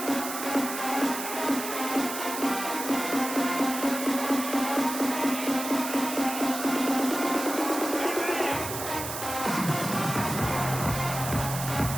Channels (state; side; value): noise; right; hiss, 6 dB below the sound